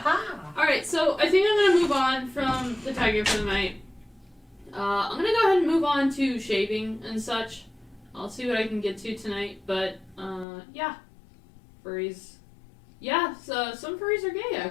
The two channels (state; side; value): drops out; right; at 10.5 s